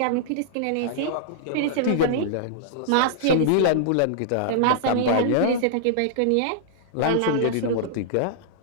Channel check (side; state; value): both; different; correlation -0.01